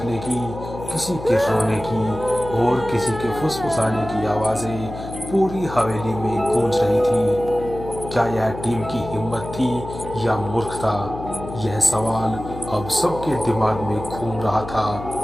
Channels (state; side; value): noise; left; hum, 11 dB below the sound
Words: की, किसी के रोने की और किसी के फुसफुसाने की आवाजें पूरी हवेली में गूंज रही थी। क्या यह टीम की हिम्मत थी या मूर्खता? यह सवाल अब सबके दिमाग में घूम रहा था।